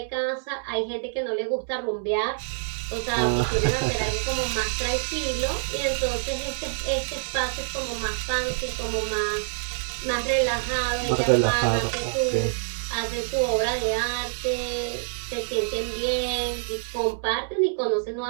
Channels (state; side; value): silent; left; 61 dB below the other